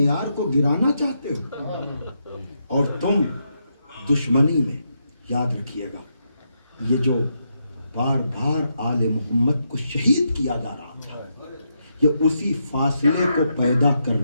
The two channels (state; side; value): inverted; both; correlation -0.81